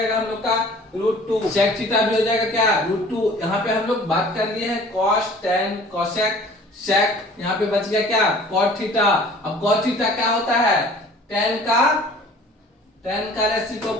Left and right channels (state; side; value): normal; both; correlation 0.49